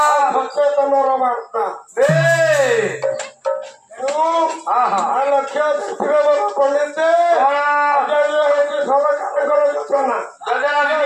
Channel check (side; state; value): both; identical; correlation 1.00